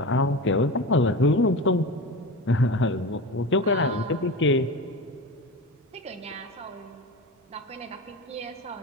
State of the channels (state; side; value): normal; both; correlation 0.27